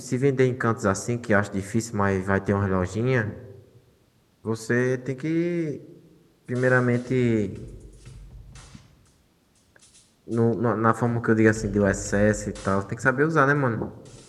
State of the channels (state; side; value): identical; both; correlation 1.00